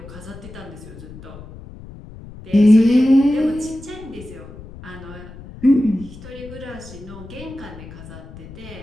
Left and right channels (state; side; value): noise; left; rumble, 16 dB below the sound